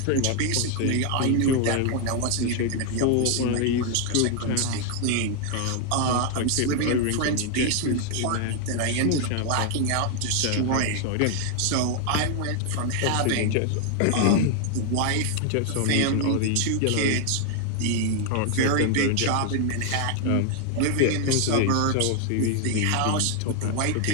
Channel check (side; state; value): both; different; correlation 0.00